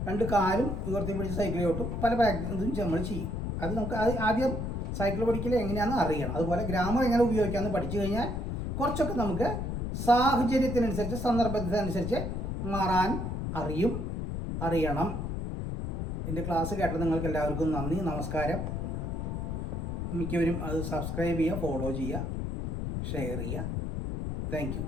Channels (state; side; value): noise; left; rumble, 3 dB below the sound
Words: 2 കാലും ഉയർത്തി പിടിച്ച് സൈക്കിളെ ഓട്ടും. പല പ്രാക്ടീസും നമ്മൾ ചെയ്യും. അത് നമുക്ക് ആദ്യം സൈക്കിൾ പഠിക്കൽ എങ്ങനെയാണെന്ന് അറിയണം. അതുപോലെ ഗ്രാമർ എങ്ങനെ ഉപയോഗിക്കാമെന്ന് പഠിച്ചു കഴിഞ്ഞാൽ കുറച്ചൊക്കെ നമുക്ക് സാഹചര്യത്തിനനുസരിച്ച്, സന്ദർഭത്തിനനുസരിച്ച് മാറാൻ അറിയണം. എൻ്റെ ക്ലാസ് കേട്ട നിങ്ങൾക്ക് എല്ലാവർക്കും നന്ദി, നമസ്കാരം. മിക്കവരും അത് സബ്സ്ക്രൈബ് ചെയ്യുക, ഫോളോ ചെയ്യുക, ഷെയർ ചെയ്യുക. Thank you.